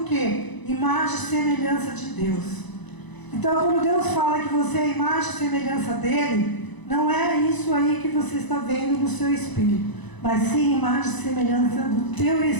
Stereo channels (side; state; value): right; late; 1.0 ms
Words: quê? Imagem e semelhança de Deus. Então, quando Deus fala que você é imagem e semelhança dEle, não é isso aí que você está vendo no seu espírito, mas sim imagem e semelhança do teu